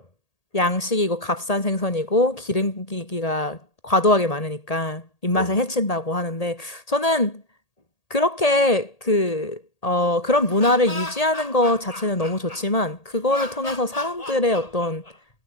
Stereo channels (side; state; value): right; late; 1.8 ms